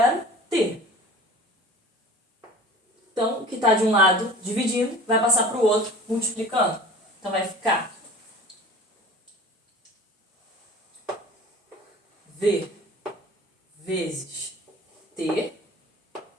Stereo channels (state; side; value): normal; both; correlation 0.42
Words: T. Então, o que está de um lado dividindo vai passar para o outro multiplicando. Então, vai ficar V vezes T